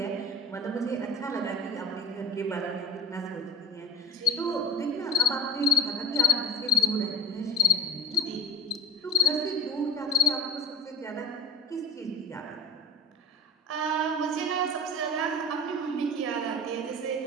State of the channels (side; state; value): both; normal; correlation 0.37